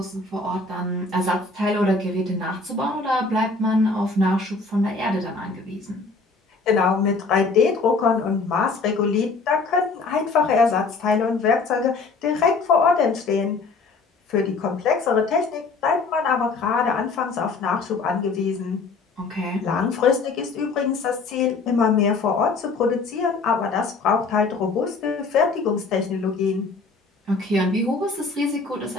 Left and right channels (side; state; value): right; quieter; 4.0 dB